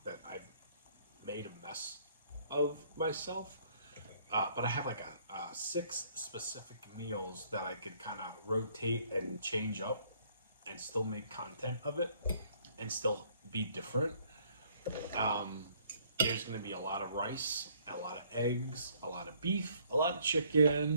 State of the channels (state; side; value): inverted; both; correlation -0.63